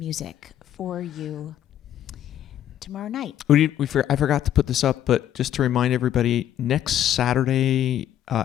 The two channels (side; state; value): right; quieter; 11.2 dB